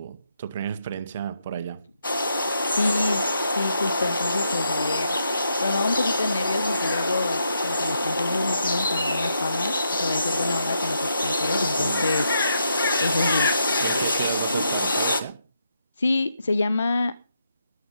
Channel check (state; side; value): inverted; both; correlation -0.79